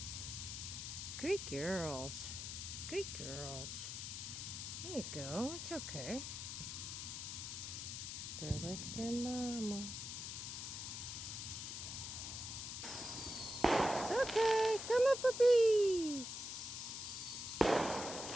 Good girls. Good girls. There you go. It's okay. They're like their mama. It's okay. Come on, puppies.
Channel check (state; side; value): noise; left; hiss, 6 dB below the sound